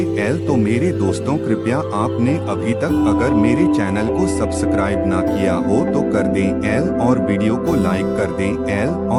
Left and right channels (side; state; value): both; identical; correlation 1.00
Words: तो मेरे दोस्तों, कृपया आपने अभी तक अगर मेरे चैनल को सब्सक्राइब ना किया हो तो कर दें और वीडियो को लाइक कर दें